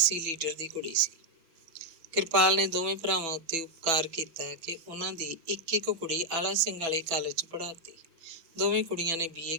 ਲੀਡਰ ਦੀ ਕੁੜੀ ਸੀ। ਕਿਰਪਾਲ ਨੇ ਦੋਵੇਂ ਭਰਾਵਾਂ ਉੱਤੇ ਉਪਕਾਰ ਕੀਤਾ ਕਿ ਉਹਨਾਂ ਦੀ ਇੱਕ ਕੁੜੀ ਆਲਾ ਸਿੰਘ ਵਾਲੇ ਕਾਲਜ 'ਚ ਪੜ੍ਹਾਤੀ। ਦੋਵੇਂ ਕੁੜੀਆਂ ਨੇ BA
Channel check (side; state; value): left; late; 6.1 ms